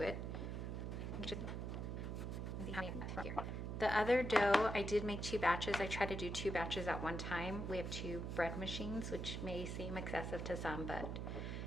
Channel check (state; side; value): noise; right; hum, 3 dB below the sound